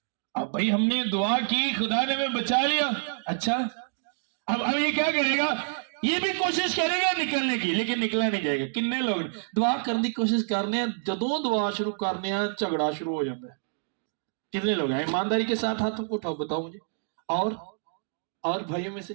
अब भाई हमने दुआ की, खुदा ने हमें बचा लिया। अच्छा, अब ये क्या करेगा, ये भी कोशिश करेगा निकलने की, लेकिन निकला नहीं जाएगा। किन्ने लोग दुआ करने की कोशिश करने, जदों दुआ शुरू करने झगड़ा शुरू हो जाता है। कितने लोग हैं ईमानदारी के साथ हाथ उठाओ, बताओ मुझे। और भाइयों में से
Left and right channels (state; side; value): silent; left; digital silence